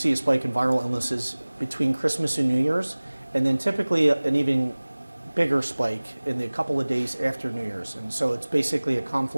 a spike in viral illnesses between Christmas and New Year's, and then typically an even bigger spike in the couple of days after New Year's. And so it's basically a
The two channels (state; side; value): inverted; both; correlation -1.00